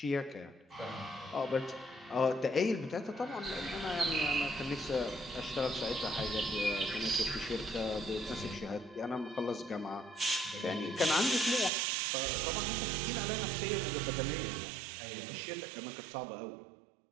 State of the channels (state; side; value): drops out; left; at 11.7 s